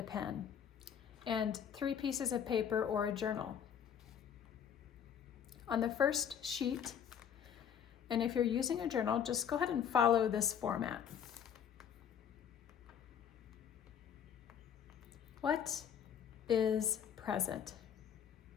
pen, and 3 pieces of paper or a journal. On the first sheet, and if you're using a journal, just go ahead and follow this format. What is present?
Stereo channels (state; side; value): quieter; right; 8.4 dB